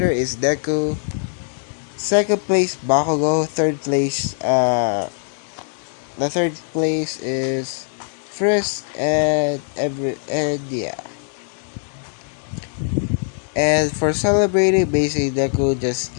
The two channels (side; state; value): right; silent; 58 dB below the other